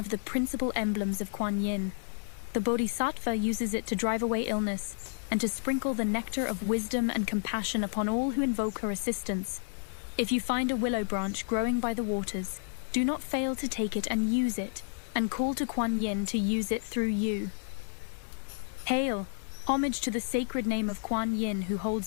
the principal emblems of Kuan Yin. The Bodhisattva uses it to drive away illness and to sprinkle the nectar of wisdom and compassion upon all who invoke her assistance. If you find a willow branch growing by the waters, do not fail to take it and use it, and call to Kuan Yin to use it through you. Hail, Homage to the sacred name of Kuan Yin who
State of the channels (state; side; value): silent; right; digital silence